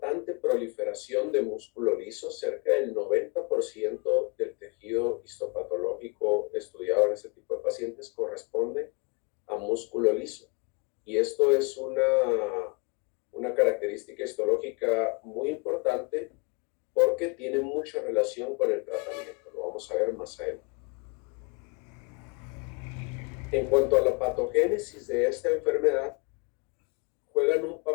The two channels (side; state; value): right; quieter; 30.8 dB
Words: proliferación de músculo liso. Cerca del 90% del tejido histopatológico estudiado en este tipo de pacientes corresponde a músculo liso. Y esto es una característica histológica muy importante porque tiene mucha relación con el tratamiento. Lo vamos a ver más adelante. En cuanto a la patogénesis de esta enfermedad, juegan un